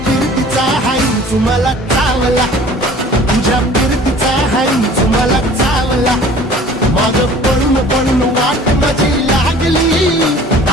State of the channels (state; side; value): normal; both; correlation 0.47